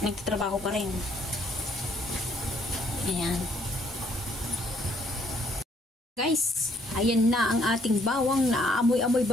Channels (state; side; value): normal; both; correlation 0.66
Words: nagtatrabaho pa rin. Ayan. Guys, ayan na ang ating bawang. Naamoy-amoy